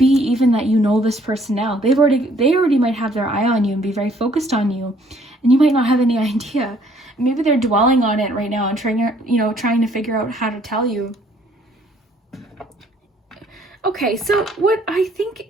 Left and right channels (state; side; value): normal; both; correlation 0.62